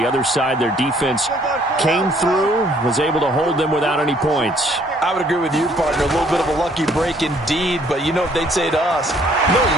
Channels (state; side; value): normal; both; correlation 0.62